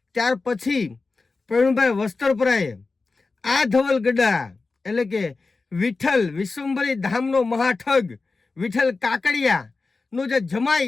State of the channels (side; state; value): right; quieter; 3.9 dB